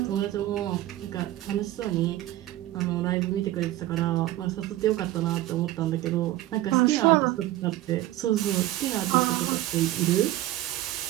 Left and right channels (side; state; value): left; quieter; 15.4 dB